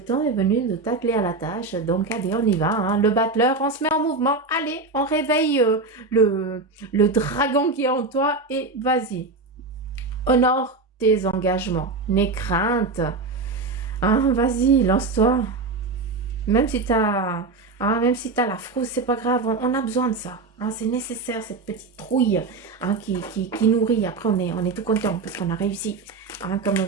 est venu de t'atteler à la tâche. Donc allez, on y va, hein. Le battleur, on se met en mouvement. Allez, on réveille le dragon qui est en toi et vas-y. Honore tes engagements, n'aie crainte. Hein, vas-y, lance-toi. Même si t'as la frousse, c'est pas grave, on a besoin de ça. Hein, c'est nécessaire, cette petite trouille, hein, qui nourrit. Après, on est tout content parce qu'on a réussi. Hein,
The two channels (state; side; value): quieter; left; 3.8 dB